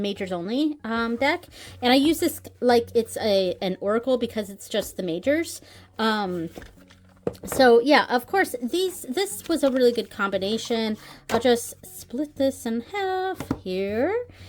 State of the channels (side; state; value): both; identical; correlation 1.00